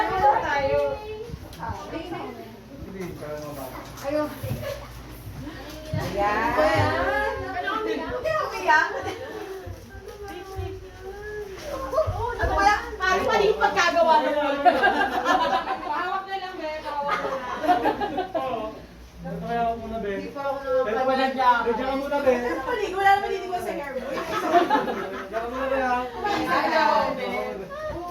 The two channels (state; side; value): identical; both; correlation 1.00